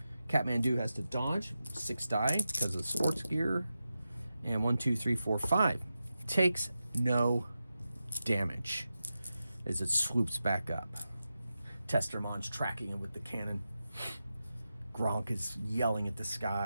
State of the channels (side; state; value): both; inverted; correlation -0.91